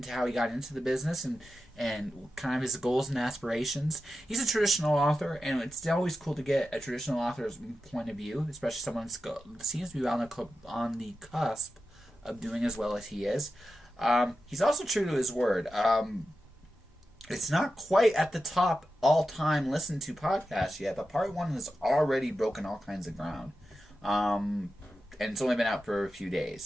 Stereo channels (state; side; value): normal; both; correlation 0.91